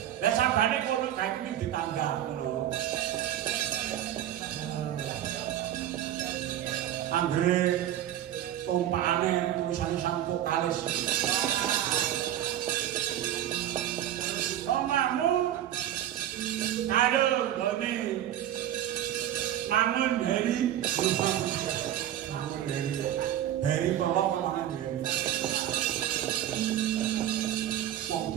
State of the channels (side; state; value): left; quieter; 11.7 dB